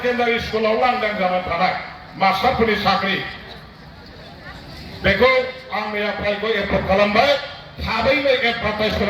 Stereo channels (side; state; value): both; identical; correlation 1.00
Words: স্কুलाव लांदां जाना थानाय मास्टारफोरनि साख्रि बेखौ आं मैयाफ्रायबो एप्रुभ खालामबाय थाबैनो एडभारटाइज